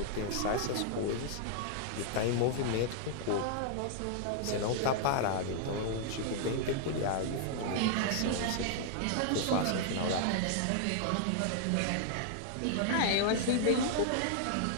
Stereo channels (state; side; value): different; both; correlation -0.01